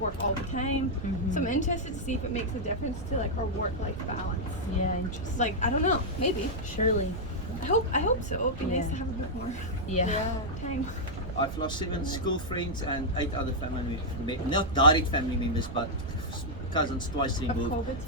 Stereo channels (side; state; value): right; noise; rumble, 11 dB below the sound